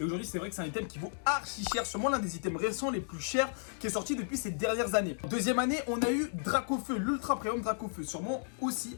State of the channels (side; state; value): right; silent; digital silence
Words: aujourd'hui c'est vrai que c'est un item qui vaut archi cher. Sûrement l'un des items récents les plus chers qui est sorti depuis ces dernières années. Deuxième année on a eu Dracofeu, l'Ultra Premium Dracofeu. Sûrement aussi